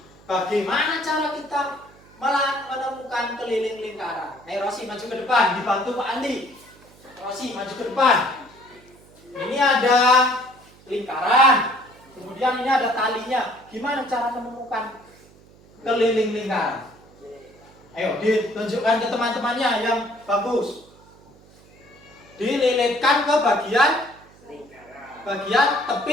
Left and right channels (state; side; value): noise; right; hum, 26 dB below the sound